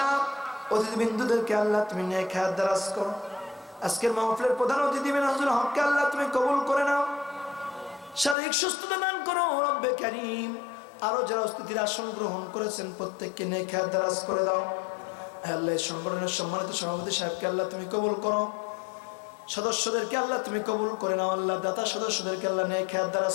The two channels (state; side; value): drops out; right; at 8.3 s